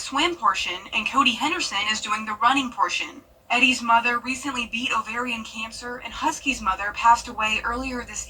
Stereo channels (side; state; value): both; identical; correlation 1.00